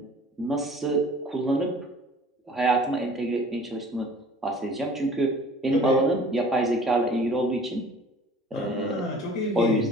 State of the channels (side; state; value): both; normal; correlation 0.48